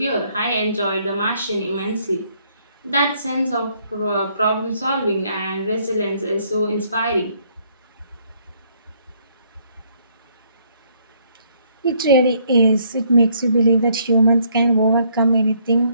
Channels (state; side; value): inverted; both; correlation -0.67